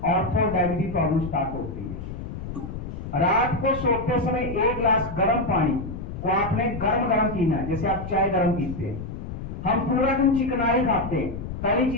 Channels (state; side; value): noise; left; rumble, 8 dB below the sound